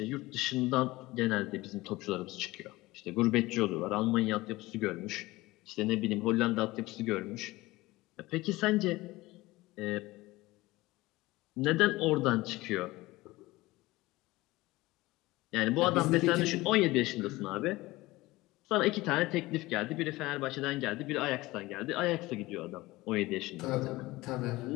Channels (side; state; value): right; quieter; 19.7 dB